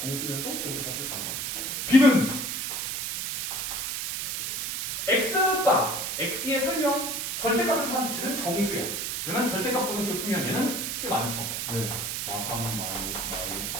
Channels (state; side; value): noise; right; hiss, 3 dB below the sound